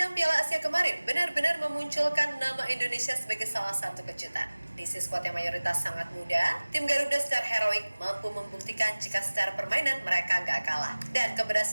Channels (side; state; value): both; inverted; correlation -1.00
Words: Piala Asia kemarin benar-benar memunculkan nama Indonesia sebagai salah satu kejutan. Diisi skuad yang mayoritas sangat muda, tim Garuda secara heroik mampu membuktikan jika secara permainan mereka gak kalah. Dan